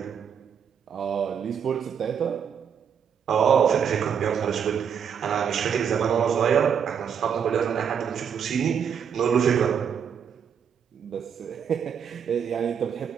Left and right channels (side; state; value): left; quieter; 7.6 dB